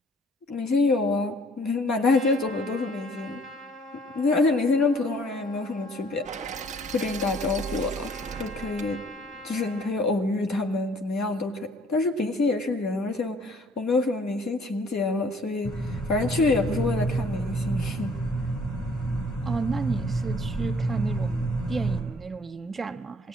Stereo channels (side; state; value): both; normal; correlation 0.58